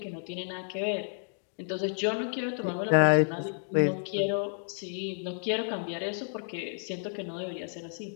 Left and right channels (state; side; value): silent; right; 57 dB below the other